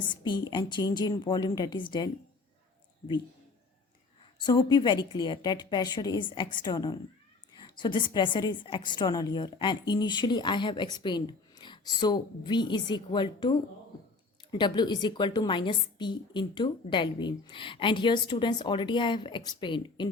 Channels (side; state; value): right; quieter; 3.9 dB